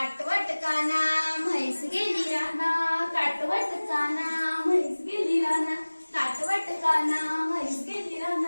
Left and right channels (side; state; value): both; inverted; correlation -1.00